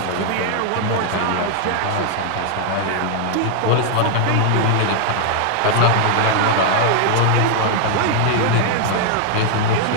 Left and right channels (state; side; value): different; both; correlation 0.00